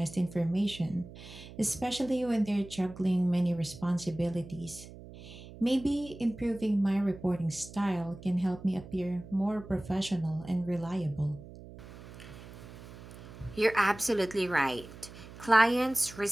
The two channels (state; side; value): noise; right; hum, 16 dB below the sound